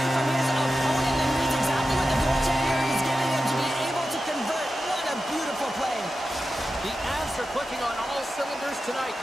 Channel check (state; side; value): normal; both; correlation 0.92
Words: from his opponent and reads exactly what the goaltender is giving him to be able to convert. What a beautiful play. The Avs are clicking on all cylinders tonight,